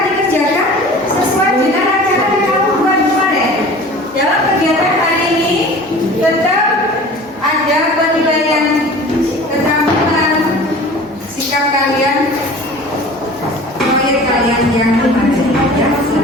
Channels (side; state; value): both; normal; correlation 0.42